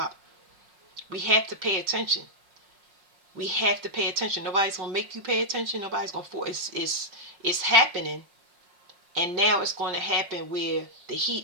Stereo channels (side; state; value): left; late; 5.5 ms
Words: We have to pay attention. We have to pay attention. Nobody's gonna make you pay attention. Nobody's gonna force. It's happening, and now it's going to happen where the